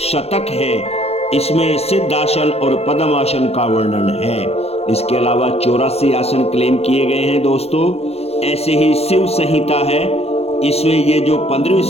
शतक है, इसमें सिद्धासन और पद्मासन का वर्णन है। इसके अलावा 84 आसन क्लेम किए गए हैं दोस्तों। ऐसे ही शिव संहिता है, इसमें ये जो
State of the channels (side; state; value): right; late; 0.30 ms